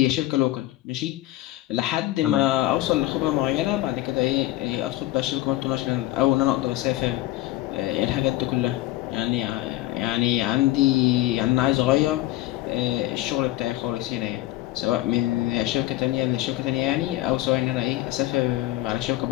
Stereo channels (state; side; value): quieter; right; 16.2 dB